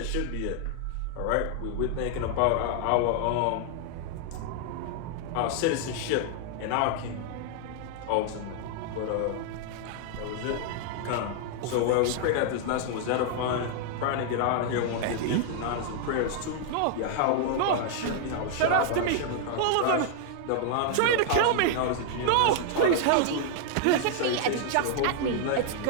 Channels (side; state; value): both; different; correlation 0.00